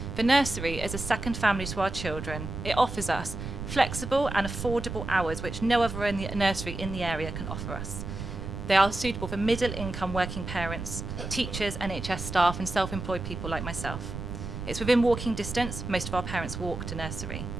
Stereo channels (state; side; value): noise; right; rumble, 7 dB below the sound